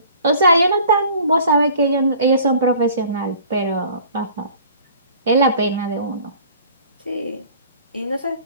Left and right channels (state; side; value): inverted; both; correlation -0.49